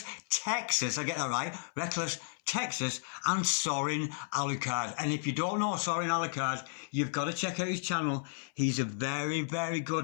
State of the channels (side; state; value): right; silent; 56 dB below the other